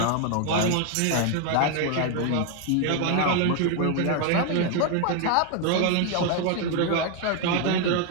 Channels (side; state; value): both; different; correlation 0.01